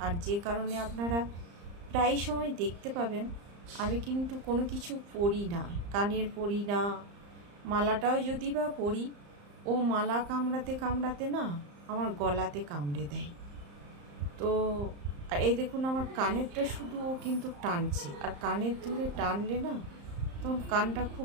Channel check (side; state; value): left; late; 35 ms